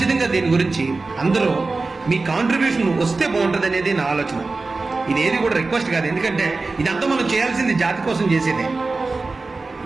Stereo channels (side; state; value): left; quieter; 3.7 dB